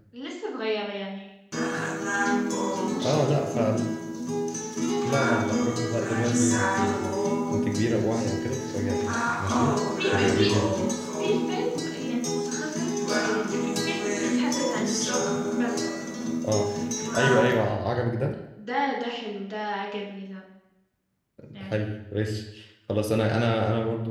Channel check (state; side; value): identical; both; correlation 1.00